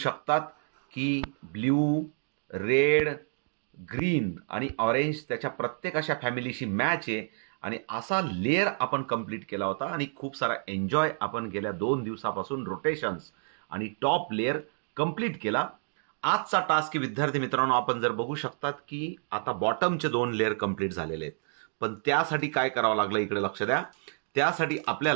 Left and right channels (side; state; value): left; silent; digital silence